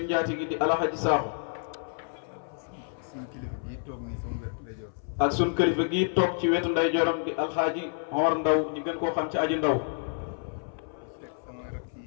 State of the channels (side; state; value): right; silent; 59 dB below the other